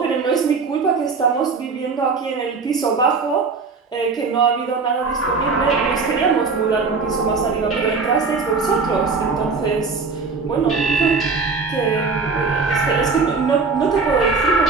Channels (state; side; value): quieter; left; 4.5 dB